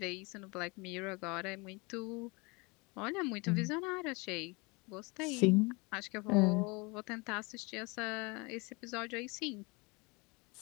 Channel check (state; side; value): quieter; right; 27.7 dB